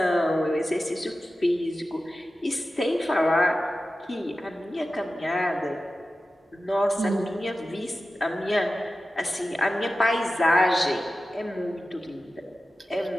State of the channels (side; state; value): both; normal; correlation 0.94